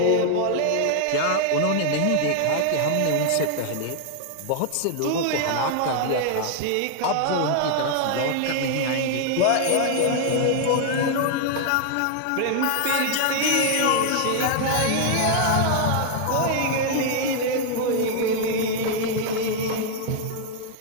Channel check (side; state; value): both; different; correlation 0.00